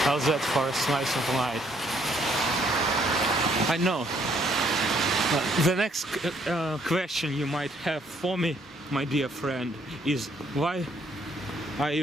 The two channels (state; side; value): normal; both; correlation 0.67